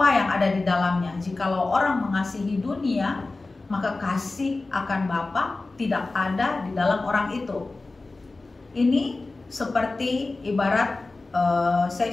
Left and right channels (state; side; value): quieter; right; 3.4 dB